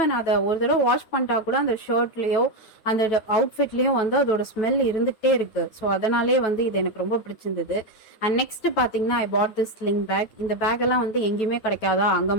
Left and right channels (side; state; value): right; late; 9.4 ms